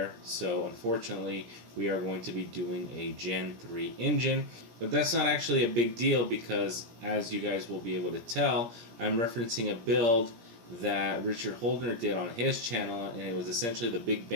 So unfortunately, we are going to be doing a Gen 3 engine. But that's not actually a big deal because, as you guys will be able to tell, I'm referencing a build that Richard Holdner did on his channel, and it was essentially the Big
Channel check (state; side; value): late; left; 17 ms